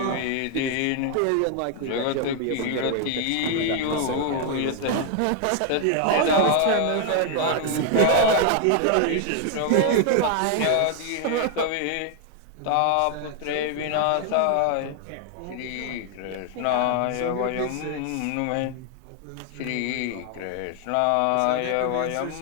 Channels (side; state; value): both; different; correlation 0.00